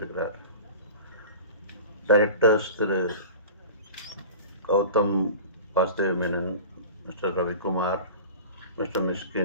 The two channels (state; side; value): inverted; both; correlation -0.36